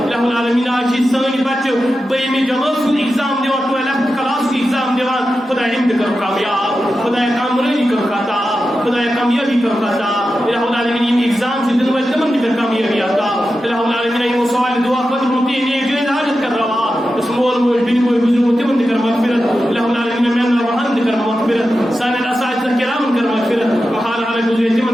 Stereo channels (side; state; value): both; normal; correlation 0.91